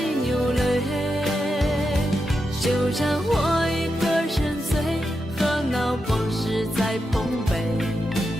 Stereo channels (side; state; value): both; normal; correlation 0.87